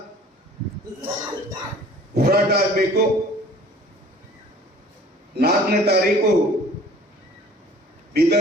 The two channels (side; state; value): both; normal; correlation 0.50